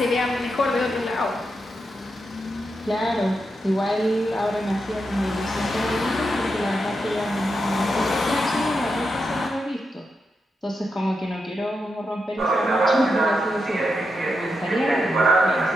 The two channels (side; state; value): both; normal; correlation 0.85